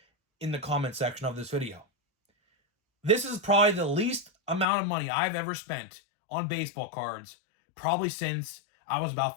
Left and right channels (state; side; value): drops out; right; at 4.7 s